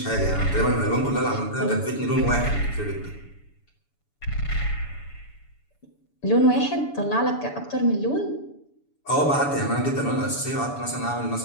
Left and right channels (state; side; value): late; right; 7.0 ms